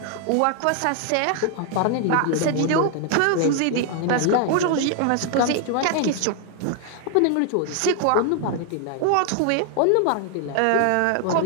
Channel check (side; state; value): both; different; correlation 0.00